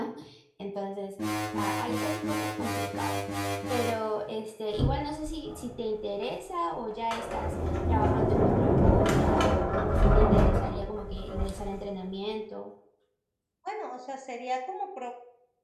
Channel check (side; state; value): both; identical; correlation 1.00